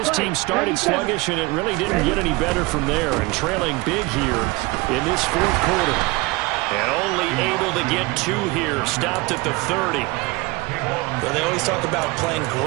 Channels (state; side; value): quieter; left; 23.7 dB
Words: team started sluggish, and it really didn't get any better from there, and trailing big here in this fourth quarter. And only able to get 2 here, stopped at the 30. Well, they always talk about playing